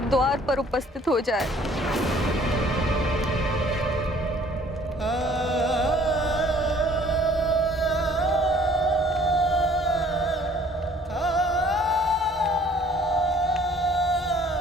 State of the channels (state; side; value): normal; both; correlation 0.56